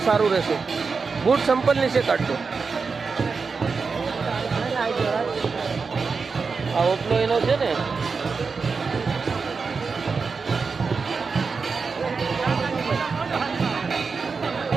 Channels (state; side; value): quieter; left; 4.9 dB